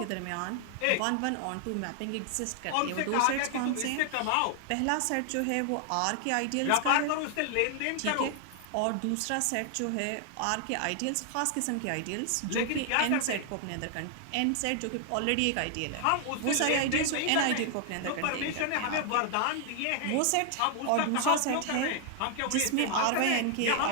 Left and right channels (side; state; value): both; different; correlation 0.00